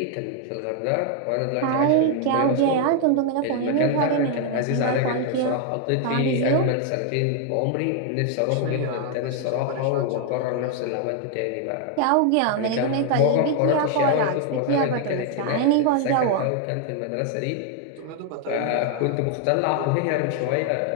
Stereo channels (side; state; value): both; different; correlation 0.00